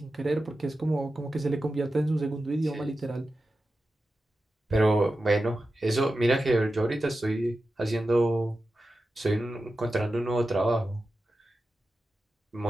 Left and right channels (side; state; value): both; normal; correlation 0.92